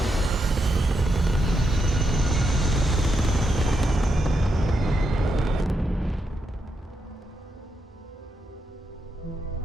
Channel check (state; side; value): normal; both; correlation 0.83